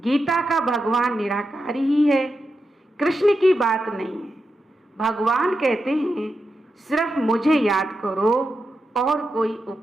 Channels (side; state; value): both; normal; correlation 0.88